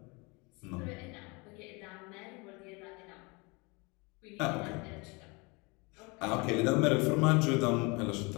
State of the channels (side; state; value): right; quieter; 28.1 dB